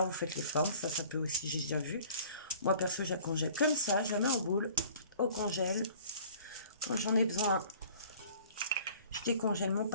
vous faites les formes, ça peut aussi, j'ai déjà vu. Moi, perso, je la congèle comme ça, je la mets en boule, au congèle. Quand j'en ai besoin, je décongèle mon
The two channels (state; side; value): inverted; both; correlation -0.50